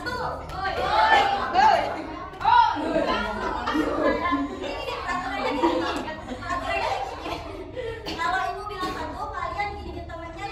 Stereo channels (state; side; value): identical; both; correlation 1.00